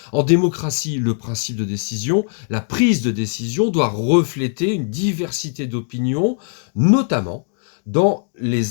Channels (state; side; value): silent; right; 56 dB below the other